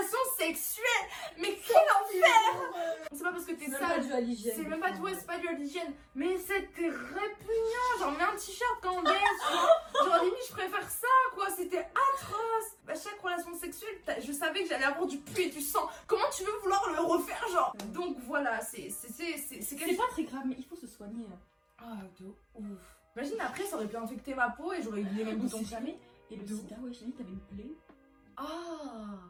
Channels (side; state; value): both; identical; correlation 1.00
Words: sexuelle. Mais quel enfer! C'est pas parce que t'es C'est même pas sale. dû à l'hygiène. C'est même pas tout, c'est pas dû à l'hygiène. Mais c'était répugnant. Genre, mets un t-shirt quand on baisse. Genre, limite, je préfère ça, quoi. C'était atroce. À chaque relation sexuelle, je savais que j'allais avoir du pu et du sang. Comment tu veux vouloir le refaire, genre? Donc voilà, c'est C'est pas très grave, mais il faut se soigner. Ah, de ouf. Imagine après, ça aurait pu infecter ma peau et j'aurais eu les mêmes On boutons. sait jamais. Et le sida, ouais, j'ai dit, t'avais une plaie. Ah.